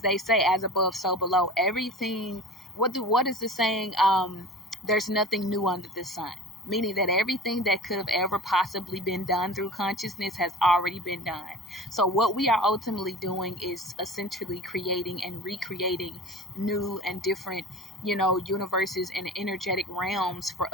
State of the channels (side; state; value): both; normal; correlation 0.38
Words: they say, as above, so below. Everything, what is the saying? There's nothing new under the sun. Meaning that everything that could have ever possibly been done through consciousness has already been done. So what we are ultimately doing is essentially creating and recreating new and different, universes and energetic realms for